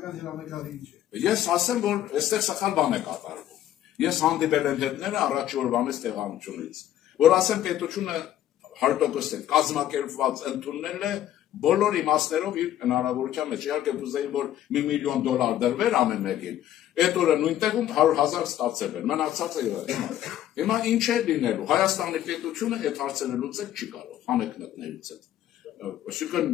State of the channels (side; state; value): right; quieter; 12.1 dB